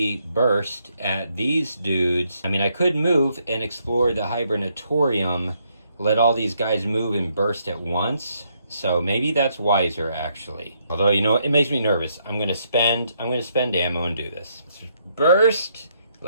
burst at these dudes. I mean, I could move and explore the hibernatorium, let all these guys move and burst at once. So maybe that's wiser, actually. Although, you know what? It makes me nervous. I'm going to spend ammo and do this. Let's burst.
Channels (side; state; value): both; inverted; correlation -0.74